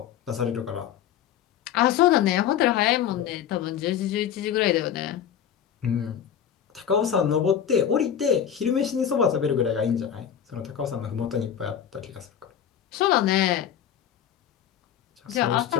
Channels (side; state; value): right; quieter; 9.3 dB